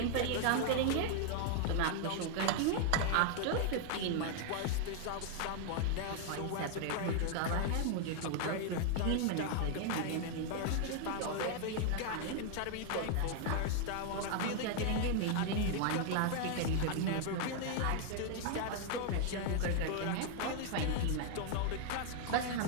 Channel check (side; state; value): both; different; correlation 0.00